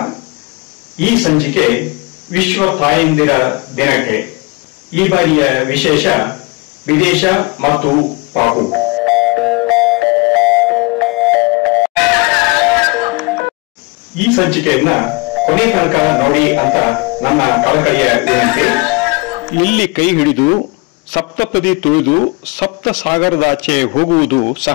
ಈ ಸಂಚಿಕೆ ವಿಶ್ವ ತಾಯಂದಿರ ದಿನಕ್ಕೆ. ಈ ಬಾರಿಯ ವಿಶೇಷ ವಿದೇಶ ಮತ್ತು ಪಾಪು. ಈ ಸಂಚಿಕೆಯನ್ನ ಕೊನೆ ತನಕ ನೋಡಿ ಅಂತ ನನ್ನ ಕಳಕಳಿಯ ವಿನಂತಿ. ಇಲ್ಲಿ ಕೈ ಹಿಡಿದು ಸಪ್ತಪದಿ ತುಳಿದು ಸಪ್ತ ಸಾಗರದಾಚೆ ಹೋಗುವುದು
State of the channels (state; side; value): quieter; right; 27.6 dB